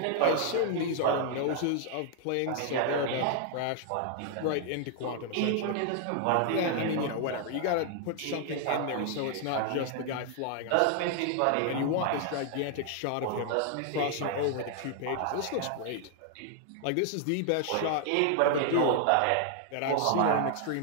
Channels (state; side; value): different; both; correlation 0.00